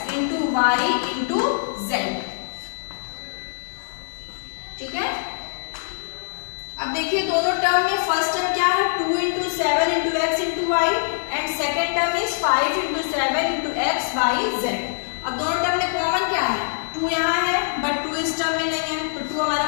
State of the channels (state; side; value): silent; right; digital silence